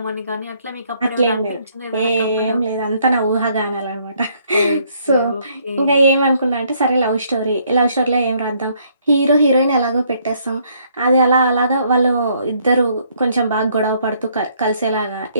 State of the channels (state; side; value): inverted; both; correlation -0.68